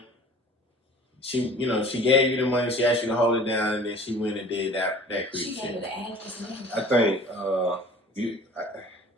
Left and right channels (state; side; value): normal; both; correlation 0.46